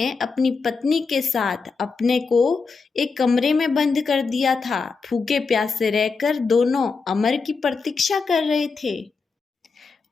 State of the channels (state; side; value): quieter; right; 4.7 dB